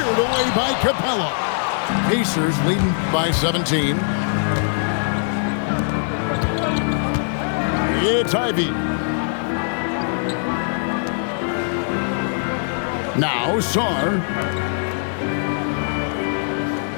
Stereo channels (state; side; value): silent; right; 65 dB below the other